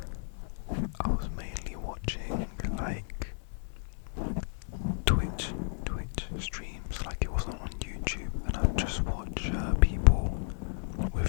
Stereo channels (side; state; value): right; silent; digital silence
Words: I was mainly watching like Twitch streams, like it wasn't on YouTube, and I'd just watch people with